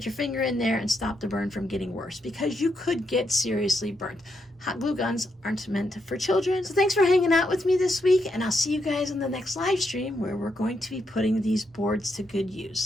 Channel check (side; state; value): both; normal; correlation 0.80